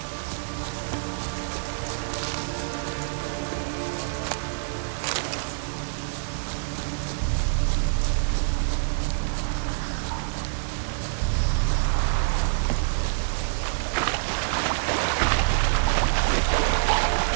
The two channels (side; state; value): left; silent; digital silence